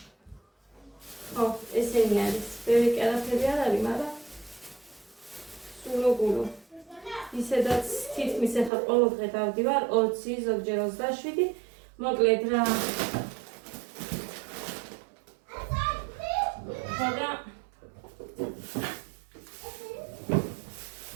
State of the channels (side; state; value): left; drops out; at 8.7 s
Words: ხო, ესენი არის. ბევრი კერაფები არ არის, მაგრამ სულოგულო. ისედაც თითქმის ეხლა ყოველ დღე დავდივარ 20, ზოგჯერ 27. მოკლედ რა. ხოდა